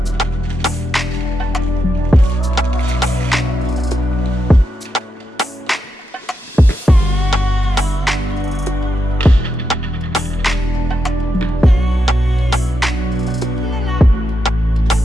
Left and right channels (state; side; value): normal; both; correlation 0.84